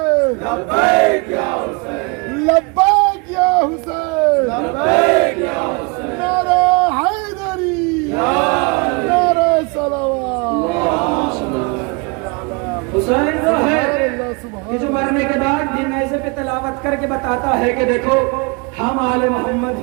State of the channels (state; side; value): quieter; left; 30.7 dB